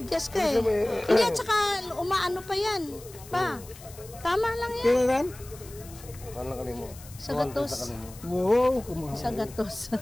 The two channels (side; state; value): left; noise; hiss, 19 dB below the sound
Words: ka eh. Hindi at saka umaano pa yan. Pa. Tama lang yan. Kaya ran? ano ka mo? Sa gatos. Wow, kumahal. Sa gatos.